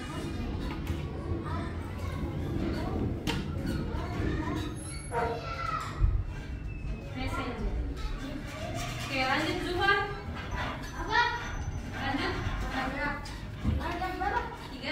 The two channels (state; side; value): identical; both; correlation 1.00